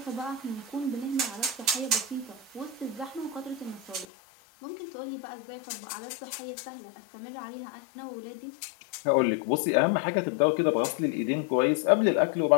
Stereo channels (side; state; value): right; drops out; at 4.0 s